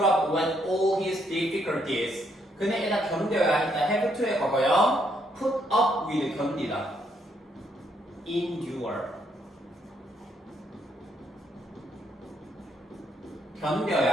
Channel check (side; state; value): both; normal; correlation 0.73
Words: up with all his difficulties. 그는 일단 견뎌야 했다. have to의 과거요. put up with 견디다. endure.